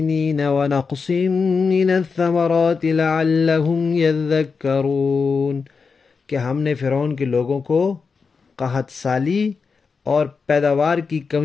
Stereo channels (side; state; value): right; quieter; 5.1 dB